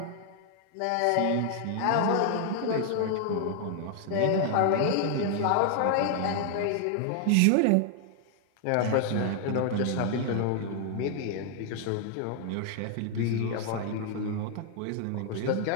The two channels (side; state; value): both; different; correlation 0.00